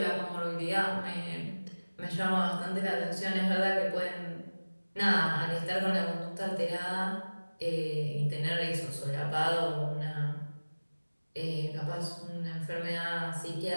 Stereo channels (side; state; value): both; inverted; correlation -1.00